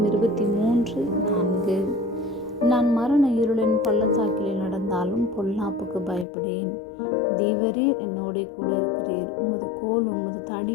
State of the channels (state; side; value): drops out; right; at 6.2 s